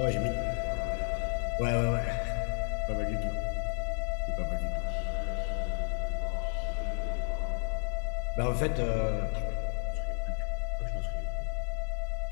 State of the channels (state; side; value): silent; right; 56 dB below the other